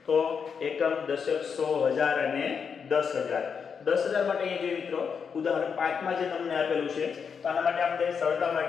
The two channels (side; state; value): right; quieter; 6.4 dB